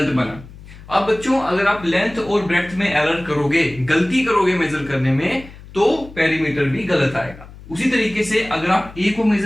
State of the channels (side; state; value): left; noise; hum, 18 dB below the sound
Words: बना। अब बच्चों अगर आप लेंथ और ब्रेड्थ में एरर करोगे, गलती करोगे मेजर करने में, तो पेरीमीटर भी गलत आएगा। उसी तरीके से अगर आप ए को